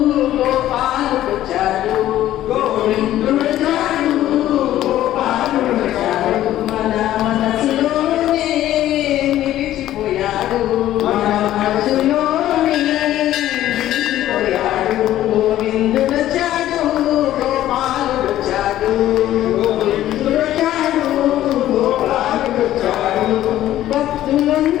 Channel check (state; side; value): quieter; right; 13.3 dB